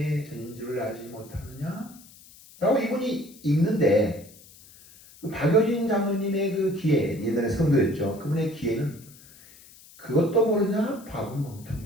전인 줄을 알지 못하느냐? 라고 이분이 읽는데 그 박효진 장로님의 그 기회, 옛날에 성도였죠. 그분의 기회는 그것도 모르냐? 바보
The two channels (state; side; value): noise; left; hiss, 22 dB below the sound